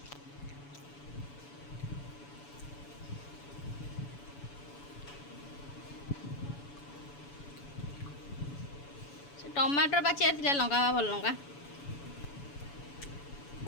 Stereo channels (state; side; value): late; right; 7.0 ms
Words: ସେ ଟମାଟର ପାଚିବାର ଥିଲା, ଲଙ୍କା ଭଲ ଲଙ୍କା